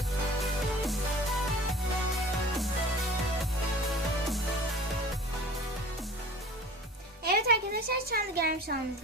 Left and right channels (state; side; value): normal; both; correlation 0.43